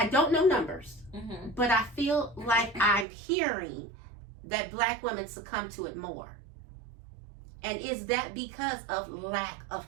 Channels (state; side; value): drops out; left; at 3.1 s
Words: don't know numbers, Mm-hmm. but I feel like I'm hearing that Black women succumb to it more. And is that because of lack of